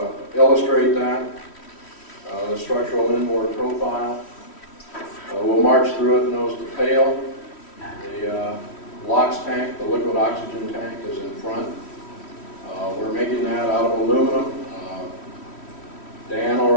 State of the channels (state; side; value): late; right; 3.1 ms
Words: illustrate that, the structural inboard profile. We'll march through it nose to tail. The LOX tank, the liquid oxygen tank, is in front. We're making that out of aluminum. Dan